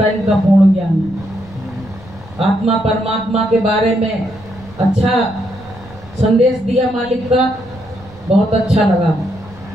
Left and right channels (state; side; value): noise; right; rumble, 21 dB below the sound